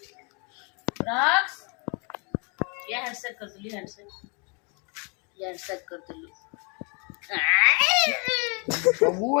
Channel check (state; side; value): quieter; right; 34.3 dB